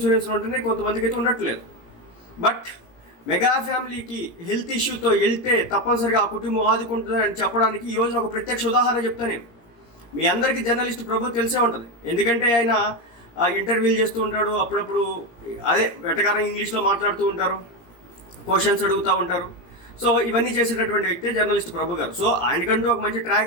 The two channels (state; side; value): late; right; 17 ms